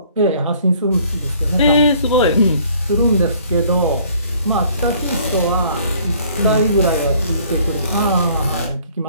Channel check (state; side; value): inverted; both; correlation -0.58